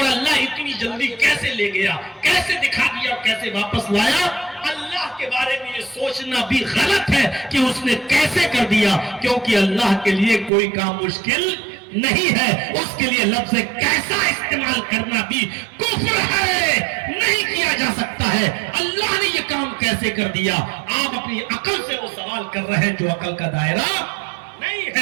اللہ اتنی جلدی کیسے لے گیا، کیسے دکھا دیا، کیسے واپس لایا؟ اللہ کے بارے میں یہ سوچنا بھی غلط ہے کہ اس نے کیسے کر دیا، کیونکہ اللہ کے لیے کوئی کام مشکل نہیں ہے۔ اس کے لیے لفظ کیسا استعمال کرنا بھی کفر ہے، نہیں کیا جا سکتا ہے۔ اللہ نے یہ کام کیسے کر دیا؟ آپ اپنی عقل سے وہ سوال کر رہے ہیں جو عقل کا دائرہ نہیں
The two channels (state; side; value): drops out; left; at 10.5 s